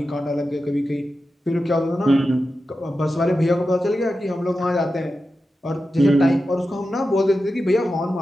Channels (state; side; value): normal; both; correlation 0.91